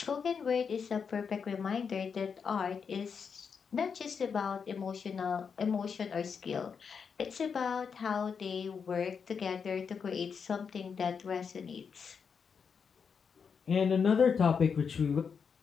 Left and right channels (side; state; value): right; quieter; 6.2 dB